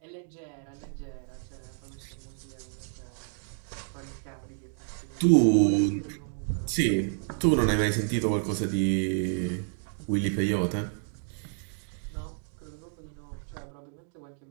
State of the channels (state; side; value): silent; left; 58 dB below the other